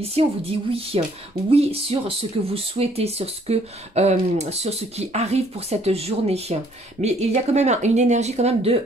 on vous dit oui, oui sur ce que vous souhaitez, sur ce qui arrive pour cette journée. Mais il y a quand même une énergie quand même de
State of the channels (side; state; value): both; normal; correlation 0.63